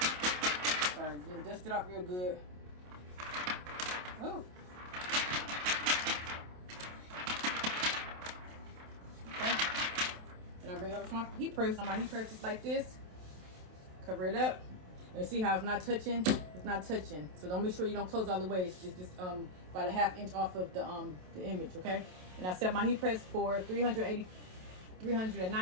Sorry, then dust it off real good. Oh. Okay. Then I bring it over to my heat press. On my heat press just like this. Cover it up. And see how it's not touching? It's not touching. So don't make sure you don't close all the way. It's just about a ½ inch off of the image, okay? And I set my heat press for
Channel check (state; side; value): late; left; 27 ms